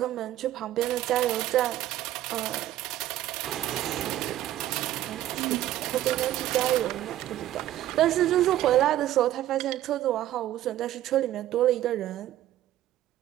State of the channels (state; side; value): quieter; left; 13.5 dB